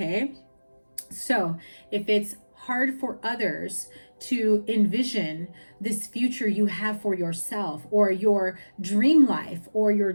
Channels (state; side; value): inverted; both; correlation -1.00